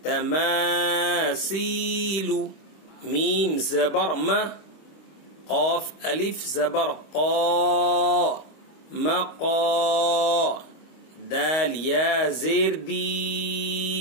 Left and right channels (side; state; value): right; late; 25 ms